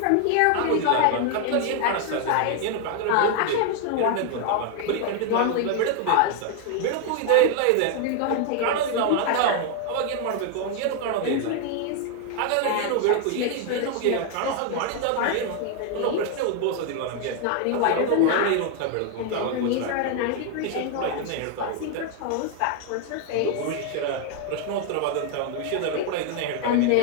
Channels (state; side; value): different; both; correlation 0.00